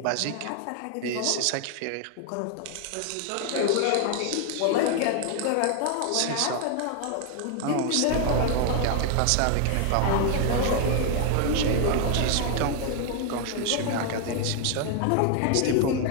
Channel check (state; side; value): different; both; correlation 0.00